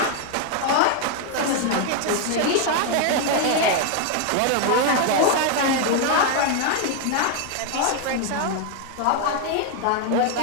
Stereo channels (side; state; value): both; different; correlation 0.01